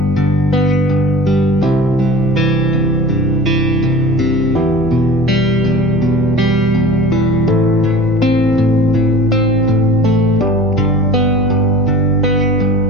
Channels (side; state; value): right; noise; hum, 12 dB below the sound